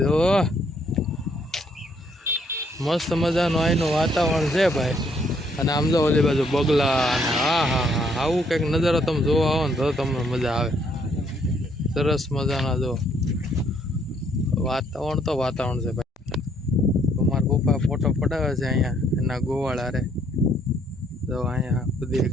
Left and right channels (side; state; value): both; normal; correlation 0.68